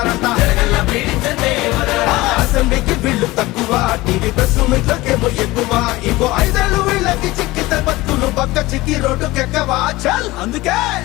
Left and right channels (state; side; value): quieter; right; 19.7 dB